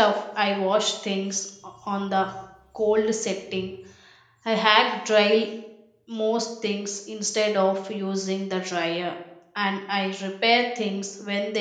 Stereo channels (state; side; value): identical; both; correlation 1.00